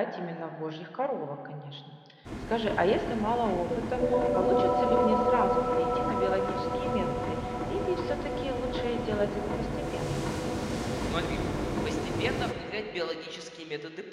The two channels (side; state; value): both; identical; correlation 1.00